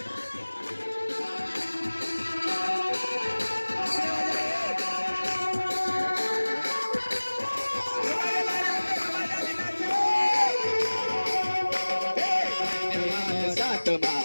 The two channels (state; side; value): inverted; both; correlation -1.00